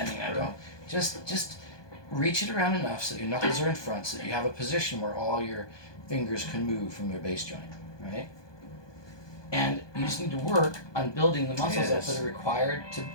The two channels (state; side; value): late; right; 1.2 ms